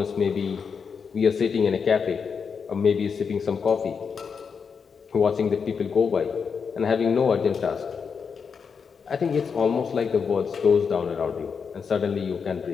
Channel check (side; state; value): right; quieter; 6.0 dB